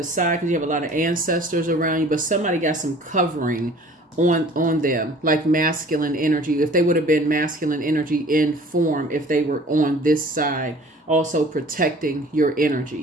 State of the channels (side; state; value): both; normal; correlation 0.49